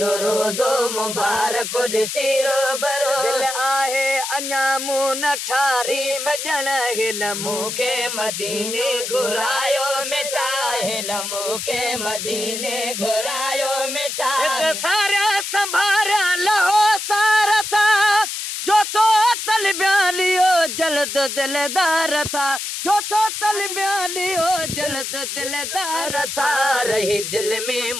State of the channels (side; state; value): left; noise; hiss, 5 dB below the sound